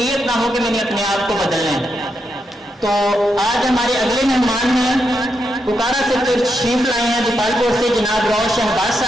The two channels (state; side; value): normal; both; correlation 0.83